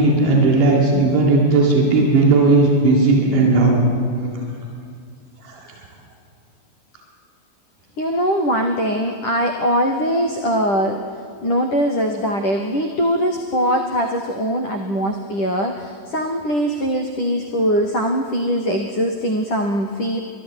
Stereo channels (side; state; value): right; late; 10 ms